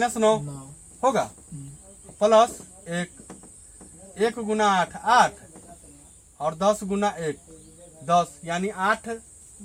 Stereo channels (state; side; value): identical; both; correlation 1.00